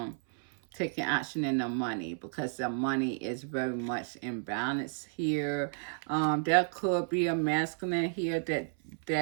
taking action in their money because their money is very much imbalanced here. There could be a masculine here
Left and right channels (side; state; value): left; silent; 56 dB below the other